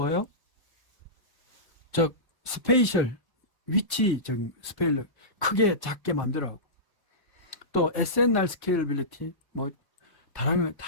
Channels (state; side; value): late; right; 1.1 ms